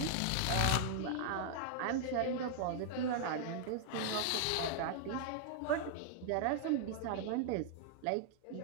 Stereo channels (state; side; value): different; both; correlation -0.01